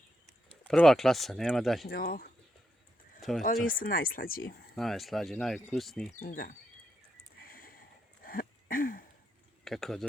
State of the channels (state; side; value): normal; both; correlation 0.82